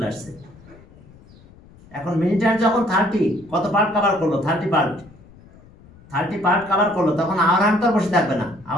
আসছে। এখন মিনিট হ্যান্ড যখন 30 কত পার্ট কভার করলো? 30 পার্ট কভার করলো, তখন আওয়ার হ্যান্ড তো বসে থাকবে না।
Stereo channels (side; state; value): left; noise; rumble, 24 dB below the sound